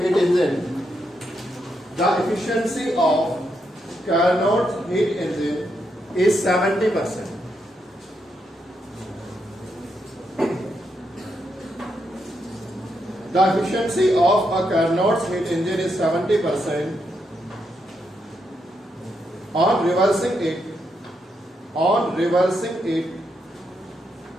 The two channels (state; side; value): normal; both; correlation 0.81